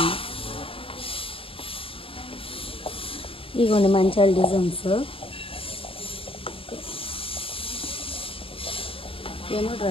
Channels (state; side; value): late; right; 0.27 ms